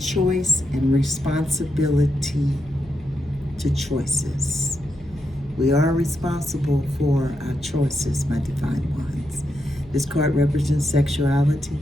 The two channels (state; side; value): noise; right; hum, 22 dB below the sound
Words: and responsibility to choices. We are responsible for our choices, my divine ones. This card represents sexuality,